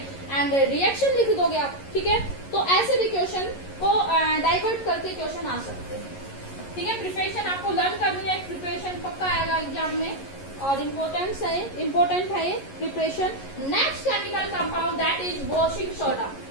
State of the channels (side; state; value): right; late; 11 ms